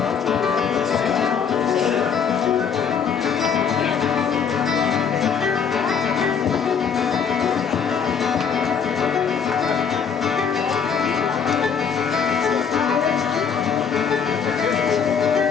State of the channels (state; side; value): quieter; right; 6.8 dB